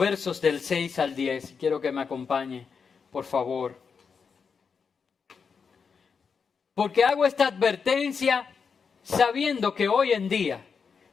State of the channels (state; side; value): quieter; right; 5.8 dB